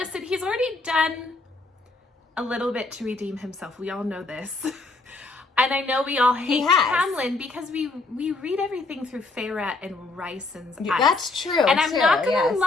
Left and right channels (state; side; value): quieter; right; 3.4 dB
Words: he's already done a little bit to redeem himself. We all know this. And I know we all hate Tamlin because we read everything through Feyre and Ryson's eyes. That's true. And I'm not going to